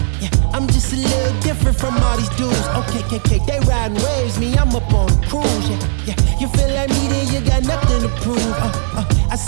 Yeah, I'm just a little different from all these dudes. Okay, they riding waves, me, I'm up on a cruise. Yeah, you feel like me, then you got nothing to prove. I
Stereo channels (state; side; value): silent; left; digital silence